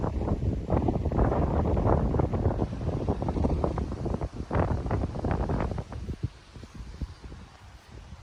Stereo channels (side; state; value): both; identical; correlation 1.00